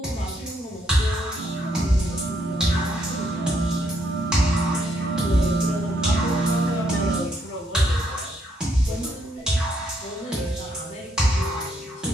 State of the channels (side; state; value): both; normal; correlation 0.74